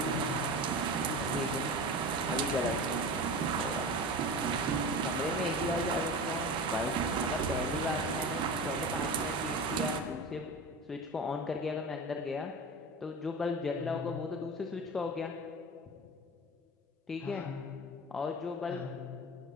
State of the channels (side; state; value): both; normal; correlation 0.30